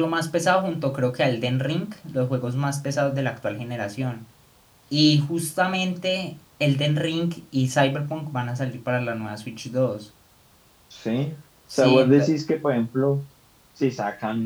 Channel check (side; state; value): both; identical; correlation 1.00